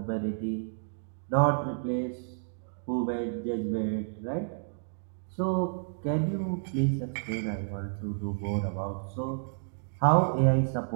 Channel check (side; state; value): left; silent; digital silence